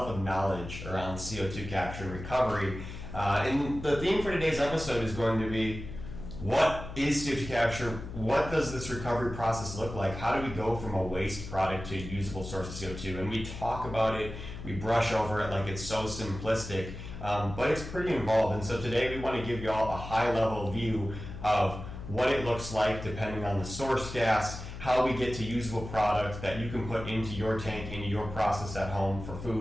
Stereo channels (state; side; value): noise; left; hum, 10 dB below the sound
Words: of knowledge around CO2 capture and recovery. And the theme for today's episode is going to be, what is CO2 capture? What does this recovery process look like? How do we go from a waste product to a usable source of CO2? And we talk about it, we brush over it like it's so simplistic, but it's pretty involved. And so today we want to give you all a high-level view of what it looks like depending on the source gas, how we get to usable product that you can put into your tank, into your process at home for